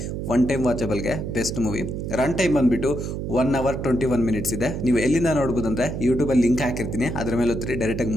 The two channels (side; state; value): right; noise; hum, 4 dB below the sound